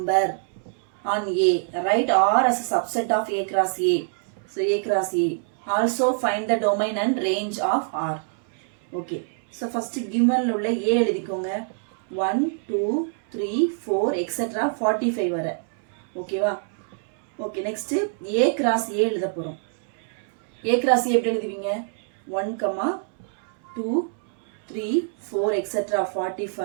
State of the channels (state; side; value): silent; left; 62 dB below the other